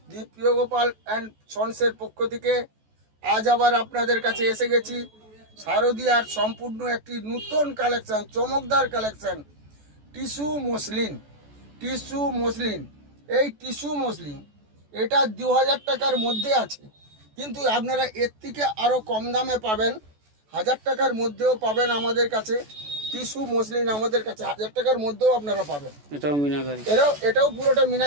দীপ্রিয় গোপাল অ্যান্ড সন্সের পক্ষ থেকে আজ আবার আপনাদের কাছে এসে গেছি শারদীয়ার সম্পূর্ণ একটি নতুন কালেকশন, চমকদার কালেকশন, টিস্যু মসলিন। এই টিস্যু মসলিন এটা 2000 টাকার মধ্যে আছে, কিন্তু আপনারা এর থেকে আরও কম দামে পাবেন, 1000 টাকার মধ্যেও পাবেন আমাদের কাছে। টিস্যু মসলিন আমাদের কাছে 1000 টাকার মধ্যেও আপনারা পাবেন। এটাও পুরোটা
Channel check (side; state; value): left; late; 14 ms